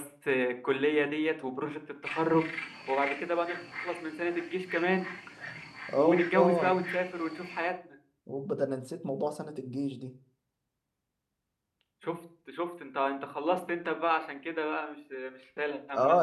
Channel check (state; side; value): identical; both; correlation 1.00